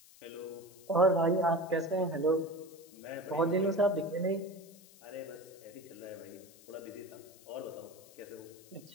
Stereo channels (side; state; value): left; noise; hiss, 23 dB below the sound